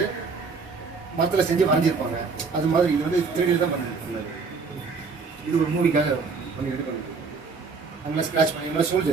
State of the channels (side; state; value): left; quieter; 4.8 dB